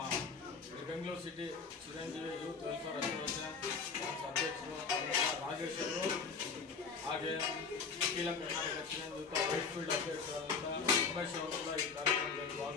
Bengaluru city Chiranjeevi youth welfare association ಅಧ್ಯಕ್ಷರು ರಾಜೇಶ್ ಅವರು, ಹಾಗೆ ಅಖಿಲ ಕರ್ನಾಟಕ ಚಿರಂಜೀವಿ ವೈಟ್ಫೀಲ್ಡ್ ಅಧ್ಯಕ್ಷರಾದಂಥ ಉಮೇಶ್ ಅವರು ಕೂಡ ಈ ಕಾರ್ಯಕ್ರಮದಲ್ಲಿ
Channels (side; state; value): right; quieter; 5.3 dB